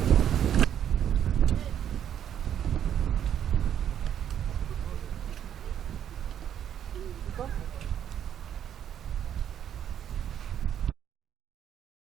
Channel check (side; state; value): left; quieter; 9.7 dB